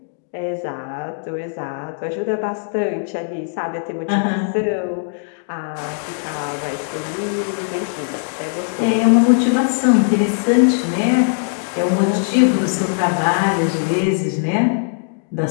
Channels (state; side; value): silent; right; digital silence